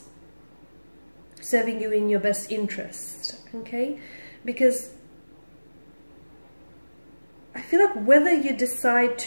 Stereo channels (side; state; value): both; inverted; correlation -1.00